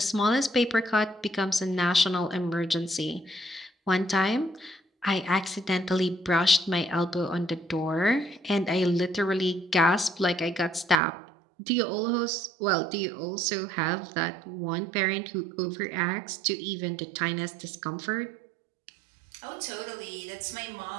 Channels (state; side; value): drops out; left; at 11.0 s